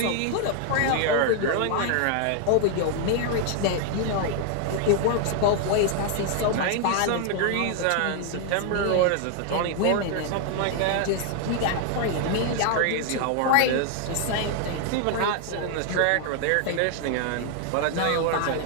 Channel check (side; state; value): both; different; correlation 0.00